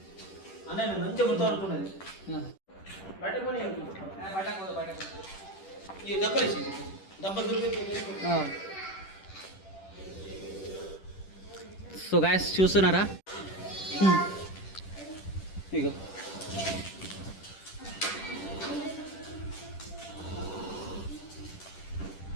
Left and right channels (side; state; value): right; late; 10 ms